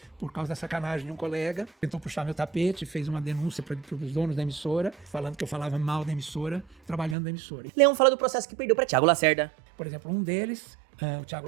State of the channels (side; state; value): left; drops out; at 7.2 s